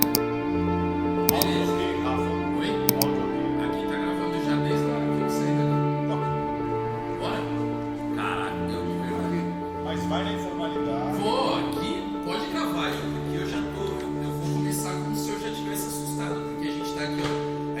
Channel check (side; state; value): both; identical; correlation 1.00